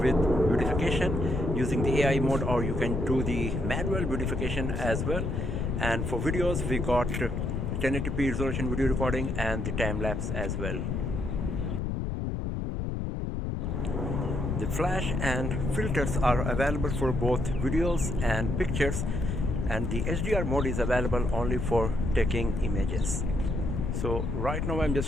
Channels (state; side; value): noise; left; rumble, 1 dB below the sound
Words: beautification using the AI mode, or you can do the manual beautification as well. And for videos, we got 1080p resolution video recording and the time-lapse as well. The flash and filters are available for both videos and pictures, and the HDR mode is available only for taking images. So right now I'm